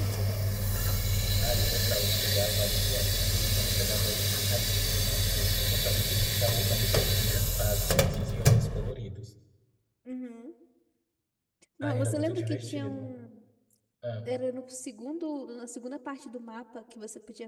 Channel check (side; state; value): both; identical; correlation 1.00